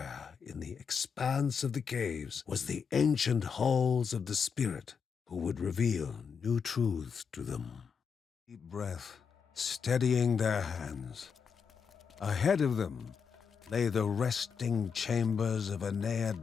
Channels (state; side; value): quieter; right; 6.2 dB